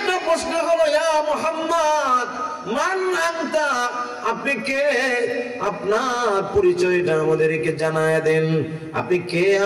প্রশ্ন হলো, ইয়া মুহাম্মদ মান আনতা, আপনি কে? আপনার পরিচয়টা আমাদেরকে জানায় দেন, আপনি কে,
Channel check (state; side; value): identical; both; correlation 1.00